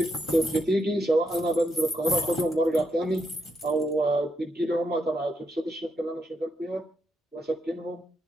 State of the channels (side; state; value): both; normal; correlation 0.80